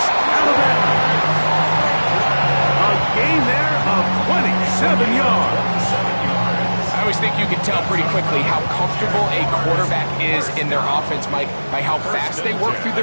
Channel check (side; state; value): both; inverted; correlation -1.00